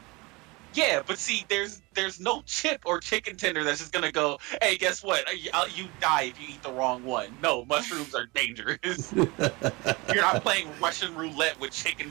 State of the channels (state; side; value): quieter; left; 24.7 dB